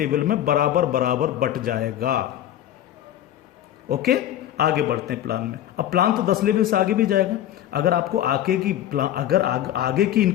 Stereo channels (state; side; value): quieter; right; 11.9 dB